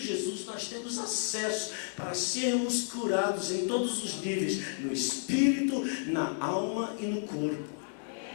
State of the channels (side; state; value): right; silent; digital silence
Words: nós temos acesso para sermos curados em todos os níveis, no espírito, na alma e no corpo.